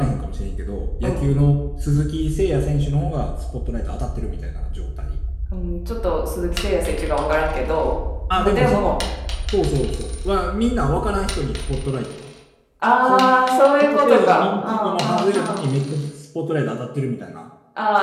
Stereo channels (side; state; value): both; identical; correlation 1.00